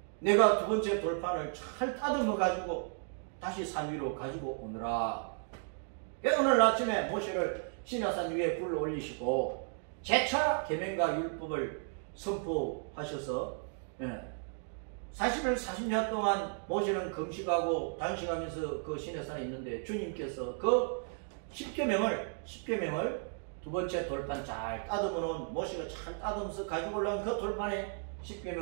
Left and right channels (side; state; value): left; silent; 55 dB below the other